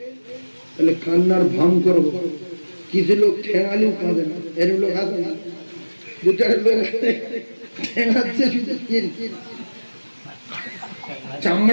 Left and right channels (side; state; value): both; inverted; correlation -1.00